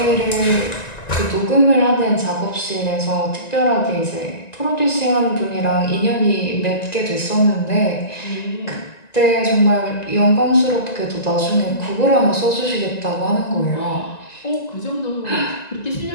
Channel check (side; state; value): right; late; 1.9 ms